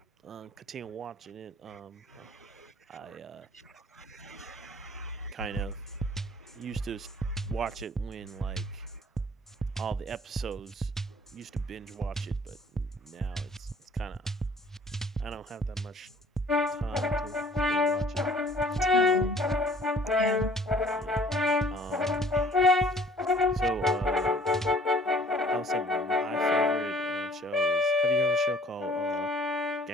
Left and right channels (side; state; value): both; normal; correlation 0.54